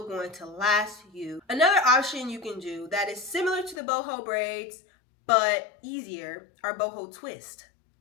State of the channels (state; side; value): drops out; right; at 3.8 s